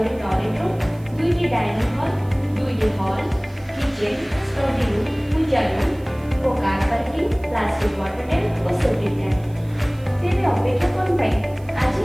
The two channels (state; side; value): noise; right; hiss, 27 dB below the sound